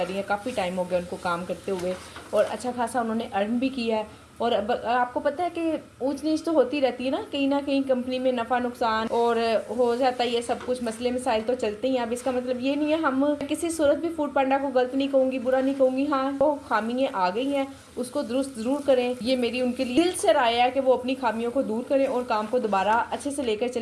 रही हैं, काफ़ी टाइम हो गया उनको काम करते हुए, और अच्छा खासा उन्होंने अर्न भी किया है। और अब आपको पता है कि ऊंच नीच तो होती रहती है ना कहीं कंपनी में नफ़ा नुकसान और हो जाता है, ये सब कुछ मसले मसाइल तो चलते ही हैं। अब इसका मतलब ये नहीं है हम किसी सूरत भी फूड पांडा को गलत नहीं कहूँगी, बुरा नहीं कहूँगी। हाँ, वो खामियाँ आ गई हैं, उसको दुरुस्त ज़रूर करें, ये मेरी उनके लिए दिल से राय है कि वो अपनी खामियों को दूर करें और काम को दोबारा अच्छे से लेकर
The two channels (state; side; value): identical; both; correlation 1.00